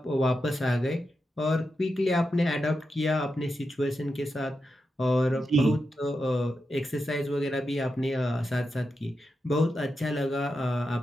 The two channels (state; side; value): normal; both; correlation 0.88